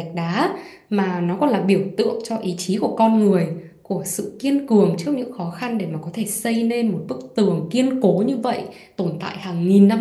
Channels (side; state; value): both; identical; correlation 1.00